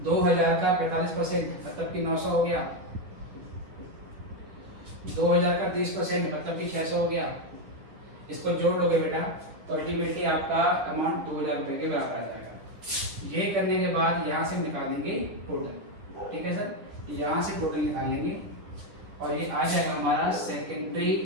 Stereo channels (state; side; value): late; left; 9.8 ms